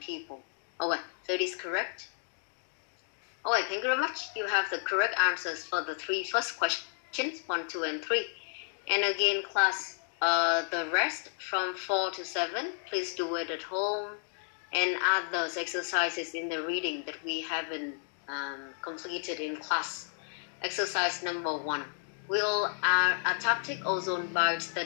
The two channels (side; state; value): right; silent; digital silence